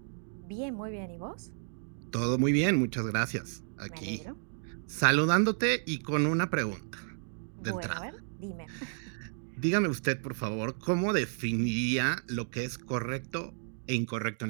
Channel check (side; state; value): left; silent; digital silence